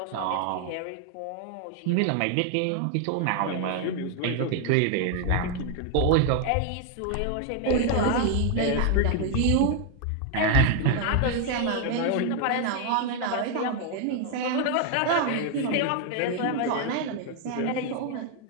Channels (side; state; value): both; different; correlation 0.00